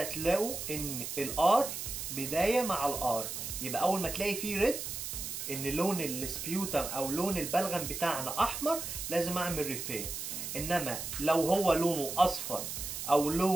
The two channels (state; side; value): noise; right; hiss, 6 dB below the sound